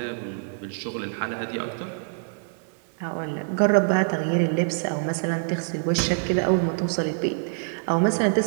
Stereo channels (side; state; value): left; silent; digital silence